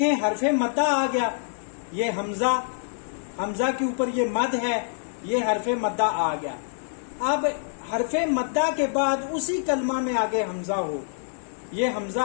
حرف مدہ آ گیا، یہ حمزہ کے اوپر یہ مد ہے، یہ حرف مدہ آ گیا. اب حرف مدہ کے بعد اسی کلمہ میں آگے حمزہ ہو، یہ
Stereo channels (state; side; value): silent; right; 61 dB below the other